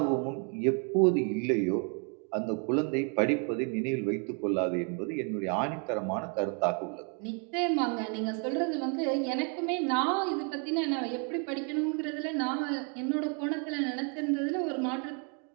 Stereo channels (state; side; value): quieter; left; 38.4 dB